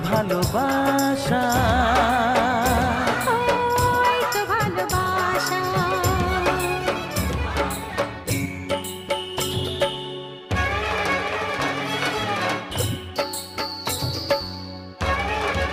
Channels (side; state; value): both; identical; correlation 1.00